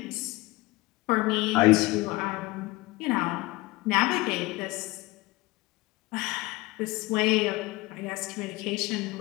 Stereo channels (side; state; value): right; quieter; 21.5 dB